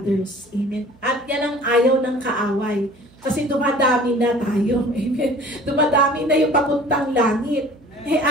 Amen? At yan ang ayaw ng kaaway. Kasi dumadami na tayo. Amen? Dumadami na yung papuntang langit.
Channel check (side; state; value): right; noise; hum, 28 dB below the sound